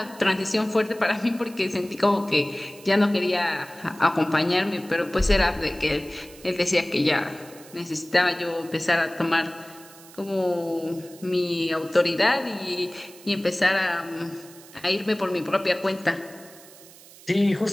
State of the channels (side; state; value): right; noise; hiss, 21 dB below the sound